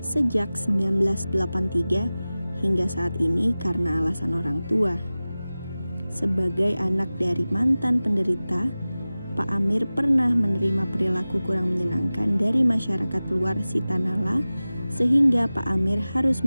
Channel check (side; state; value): both; inverted; correlation -0.97